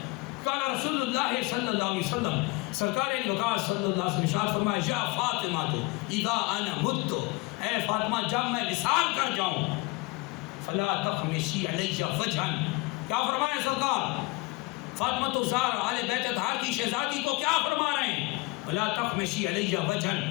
قال رسول اللہ صلی اللہ علیہ وسلم، سرکار علی وقار صلی اللہ علیہ وسلم ارشاد فرمایا یا فاطمہ تو اذا انا مت، اے فاطمہ جب میں وصال کر جاؤں فلا تخمشی علی وجہا، کیا فرمایا سرکار؟ فاطمہ الزہرا آل بیت اطہار کی شہزادی کو کیا فرما رہے ہیں؟ فلا تخمشی علی وجہا،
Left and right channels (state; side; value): quieter; right; 23.9 dB